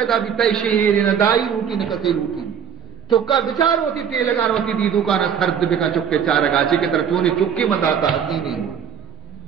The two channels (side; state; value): left; quieter; 8.1 dB